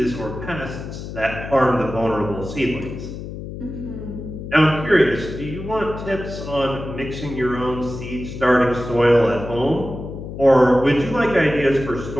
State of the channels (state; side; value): noise; left; hum, 9 dB below the sound